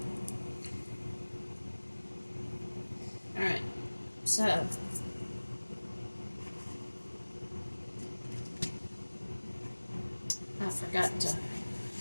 Alright, so I forgot to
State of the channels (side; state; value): both; inverted; correlation -1.00